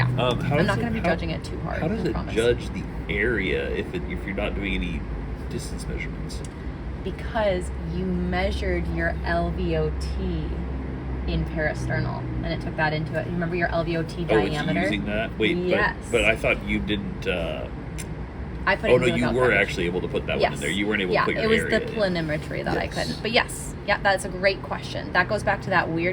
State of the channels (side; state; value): both; identical; correlation 1.00